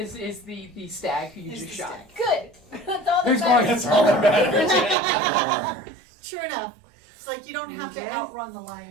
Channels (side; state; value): left; drops out; at 5.0 s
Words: the stag who you Is just the shot. stag. Good. That's all Who's that going? matters. all that matters. True enough. It's like you don't have Okay. to outrun the